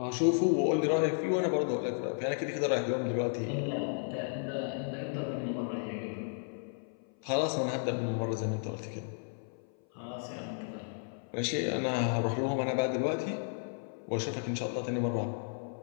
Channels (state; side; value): silent; right; 56 dB below the other